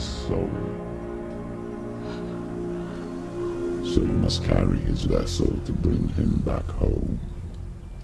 soul. So you must carry his vessel to bring him back home.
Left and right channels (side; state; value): both; identical; correlation 1.00